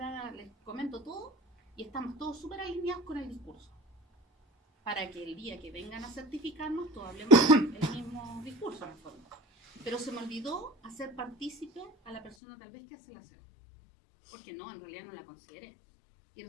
les comento todo, y estamos todos súper alineados con el discurso, para que el día que vengan a certificarnos todos hablemos el mismo discurso en el fondo. Pero se me olvidó hacer partícipe a la persona tal vez que hace la cena, porque no, en realidad no la consideré, y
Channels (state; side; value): drops out; right; at 12.4 s